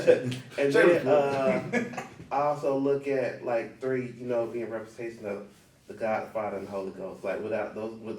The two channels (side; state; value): both; identical; correlation 1.00